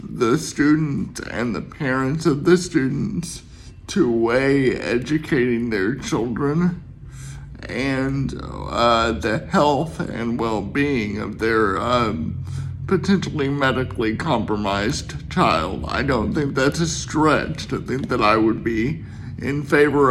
the student and the parents of the students to weigh educating their children and the health and well-being of their potentially medically compromised child. I don't think that's a stretch to think that I would be in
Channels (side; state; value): both; identical; correlation 1.00